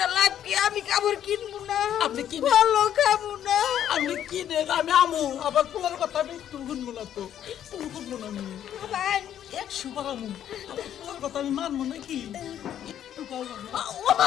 লাগবে আমি কাপড় কিনবো না আপনি কিনে- ভালো খাবো না আমি কি রে আমি আমু আবার পোলার কথা আমি একটু শুনবো না তো একটু শুনবো না আমি ভাই একশো বার আমু আবার পোলার কথা আমি মানবো নাকি একটু পাবো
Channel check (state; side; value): quieter; right; 10.4 dB